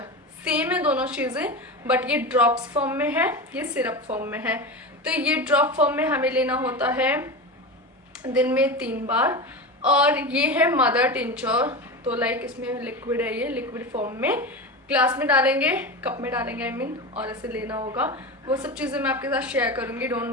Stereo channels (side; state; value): both; normal; correlation 0.24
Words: सेम है दोनों चीज़ें, बट ये ड्रॉप्स फॉर्म में है, ये सिरप फॉर्म में है। तो ये ड्रॉप फॉर्म में हमें लेना होता है दिन में 3 बार। और ये है मदर टिंचर, तो लाइक इसमें लिक्विड है, ये लिक्विड फॉर्म में ग्लास में डालेंगे, कप में डालेंगे आई मीन, और ऐसे लेना होगा। वो सब चीज़ें मैं आपके साथ शेयर करूँगी,